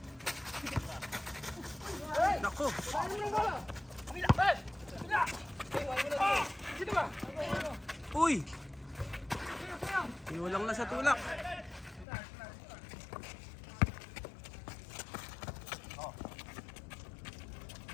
Nako. Uy. Pinulang na sa tulak.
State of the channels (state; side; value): drops out; right; at 12.1 s